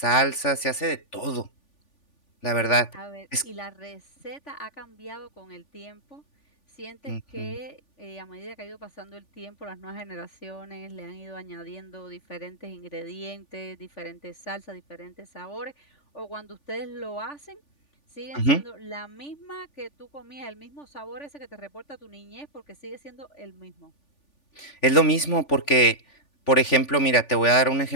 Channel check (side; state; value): right; late; 3.5 ms